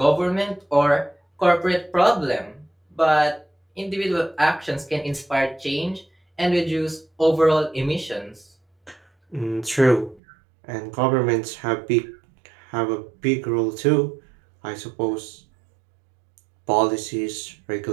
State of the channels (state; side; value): drops out; left; at 10.2 s